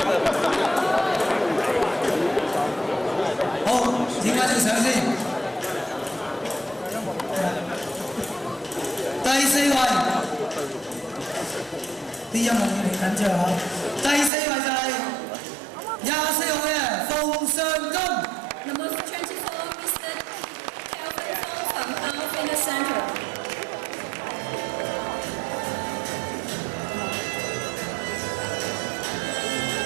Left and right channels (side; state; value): left; drops out; at 14.3 s